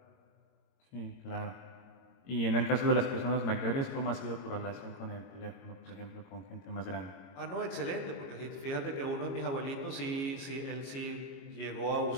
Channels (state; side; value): late; right; 22 ms